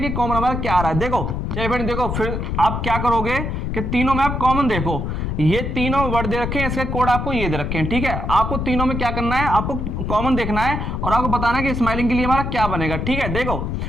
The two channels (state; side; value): noise; left; rumble, 2 dB below the sound